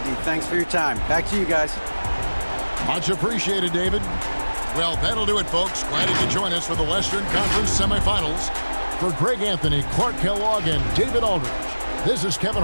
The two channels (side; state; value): both; inverted; correlation -1.00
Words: Thanks for your time. Back to you guys. Much appreciated, David. Well, that'll do it, folks. Glad you could join us for the Western Conference semifinals. For Greg Anthony, Clark Kellogg, and David Aldridge, this is Kevin